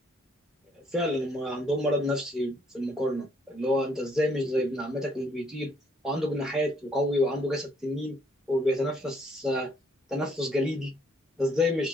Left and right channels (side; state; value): both; normal; correlation 0.67